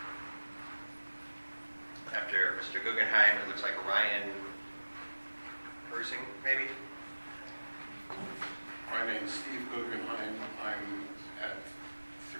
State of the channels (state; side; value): inverted; both; correlation -1.00